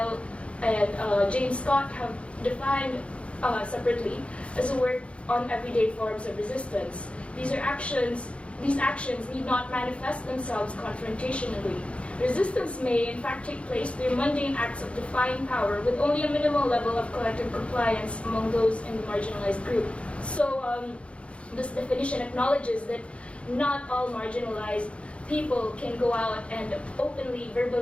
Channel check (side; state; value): right; late; 0.061 ms